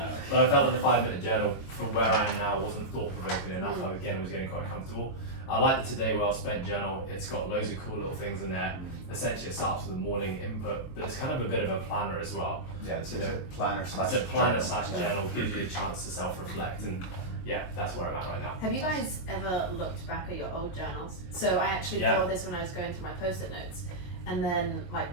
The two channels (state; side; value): late; right; 22 ms